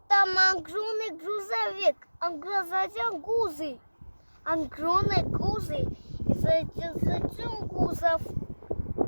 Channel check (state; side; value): inverted; both; correlation -1.00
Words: Там огромный грузовик, огромный гузы. Огромный гузы. И затем гузов.